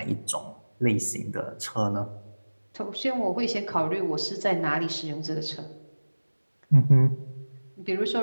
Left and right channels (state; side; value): inverted; both; correlation -1.00